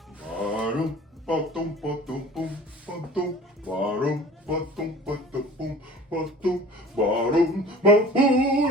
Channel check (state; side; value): normal; both; correlation 0.43